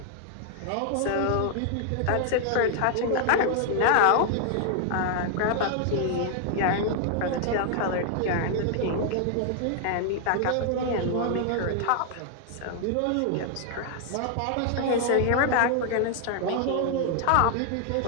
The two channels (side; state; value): both; different; correlation 0.00